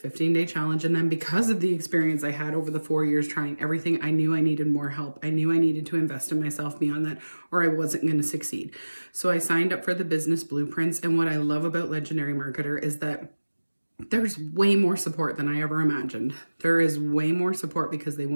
challenge. And then because of the experience I had over the 4 years trying everything, I knew I needed more help. I knew I needed to invest in myself beyond that, or I wasn't going to succeed. So I signed up for the business blueprints. And what I love about Legendary Marketer is that there's way more support than I ever imagined. There is way more support because they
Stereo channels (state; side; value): inverted; both; correlation -1.00